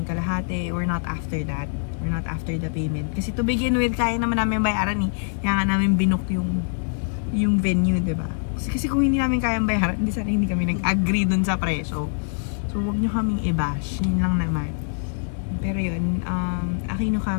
yung kalahati. We're not after that. We're not after the payment. Kasi to begin with, kaya naman namin bayaran eh. Kaya nga namin binook yung venue, diba? Kasi kung hindi namin kayang bayaran, hindi kami nag-agree dun sa presyo. So, huwag nyo kaming i-bash. Yun lang naman. Pero yun, Aquino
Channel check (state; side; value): silent; right; digital silence